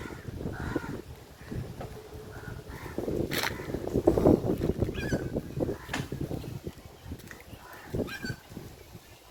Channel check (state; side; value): identical; both; correlation 1.00